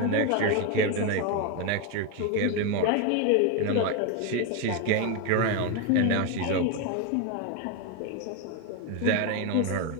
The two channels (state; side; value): different; both; correlation 0.02